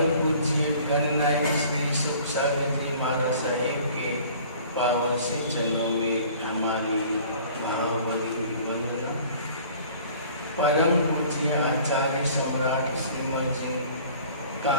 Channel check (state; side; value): inverted; both; correlation -0.49